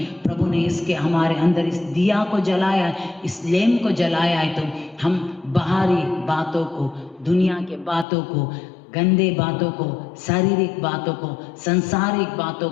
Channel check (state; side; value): drops out; right; at 8.1 s